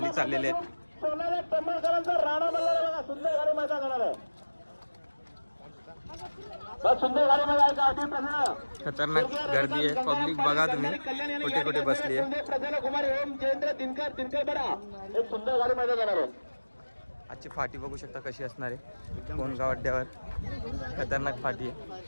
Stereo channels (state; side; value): inverted; both; correlation -1.00